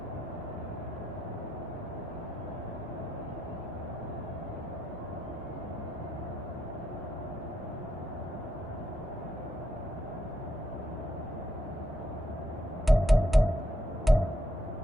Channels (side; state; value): both; normal; correlation 0.80